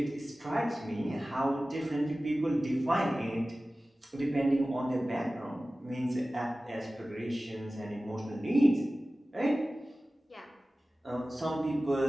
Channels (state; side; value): normal; both; correlation 0.97